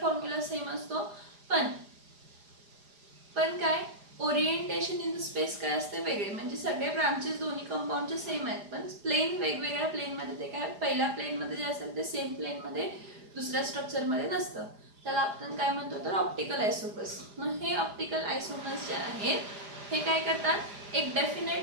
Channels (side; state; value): left; late; 4.9 ms